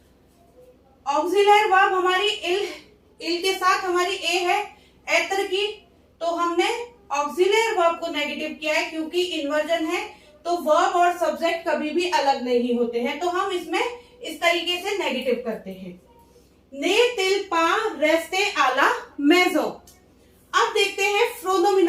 ऑक्सिलरी वर्ब हमारी इल के साथ हमारी ए है एत्र की, तो हमने ऑक्सिलरी वर्ब को नेगेटिव किया है क्योंकि इन्वर्जन है, तो वर्ब और सब्जेक्ट कभी भी अलग नहीं होते हैं, तो हम इसमें इस तरीके से नेगेटिव करते हैं। ने तिल पा रेस्ते आला मेजो। अब देखते हैं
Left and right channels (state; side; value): identical; both; correlation 1.00